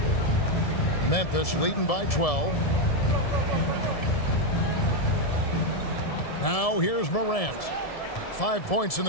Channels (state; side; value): late; right; 1.7 ms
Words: Memphis leading by 12. Now here's Morant. 5 points in